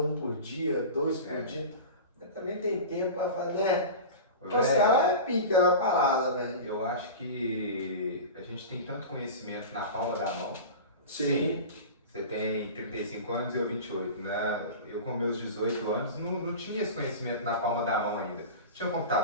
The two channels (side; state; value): both; inverted; correlation -0.31